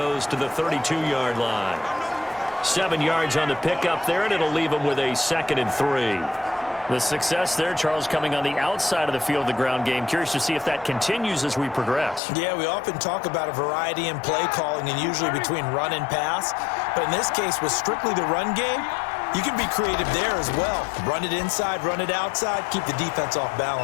to the 32-yard line. 7 yards on the pickup there, and it'll leave him with a 2nd and 3. The success there, Charles, coming on the outside of the field, the ground game. Curious to see if that continues as we progress. Yeah, we often talk about a variety in play calling and usually between run and pass. But in this case, with strictly the run game, you can be creative there as well. Run it inside, run it outside, keep the defense off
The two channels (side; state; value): right; drops out; at 12.2 s